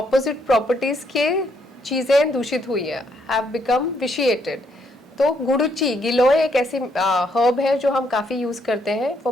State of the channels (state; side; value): normal; both; correlation 0.73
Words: properties के चीज़ें दूषित हुई है, have become vitiated. तो गुड़ुची, गिलोय एक ऐसी herb है जो हम काफ़ी यूज़ करते हैं